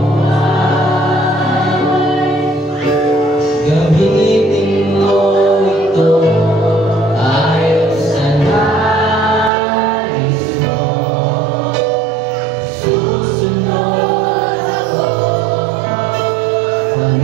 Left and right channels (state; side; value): drops out; left; at 9.5 s